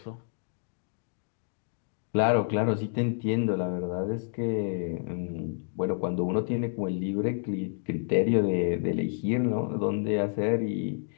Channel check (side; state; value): right; silent; digital silence